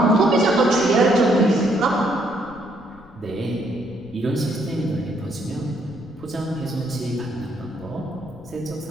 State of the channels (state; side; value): noise; left; rumble, 24 dB below the sound